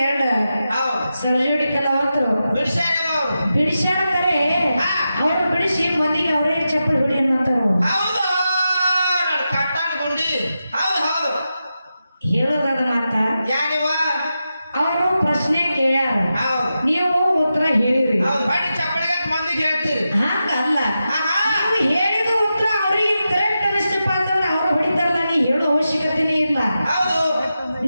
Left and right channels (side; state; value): both; inverted; correlation -0.90